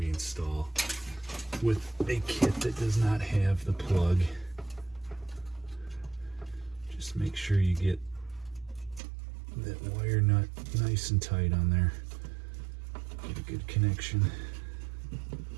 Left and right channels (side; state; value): left; drops out; at 9.0 s